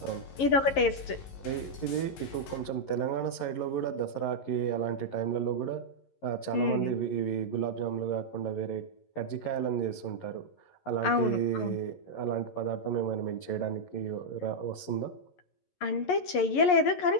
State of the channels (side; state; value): right; late; 11 ms